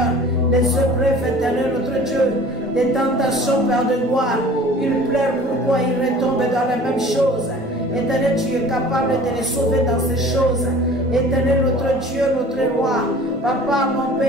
les épreuves, éternel notre Dieu, les tentations, Père de gloire. Ils pleurent, pourquoi ils retombent dans la même chose. Éternel, tu es capable de les sauver dans ces choses. Éternel, notre Dieu, notre Roi, Papa, mon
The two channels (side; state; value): both; normal; correlation 0.45